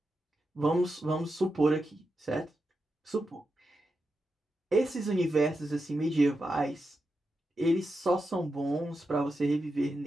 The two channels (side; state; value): both; normal; correlation 0.88